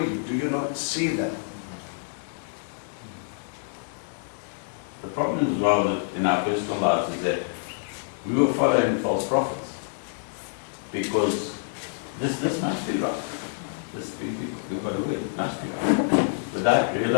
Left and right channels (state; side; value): silent; right; digital silence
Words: Do you not see that? The problem as well that in our personal lives is that we were following false prophets. Because this must be right. We've got to win, it must be right. Without